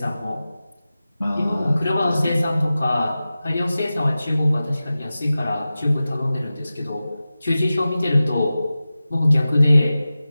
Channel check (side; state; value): both; inverted; correlation -0.95